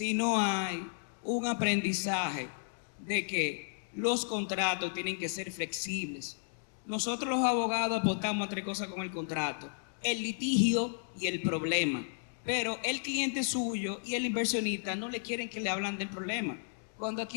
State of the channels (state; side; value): silent; right; digital silence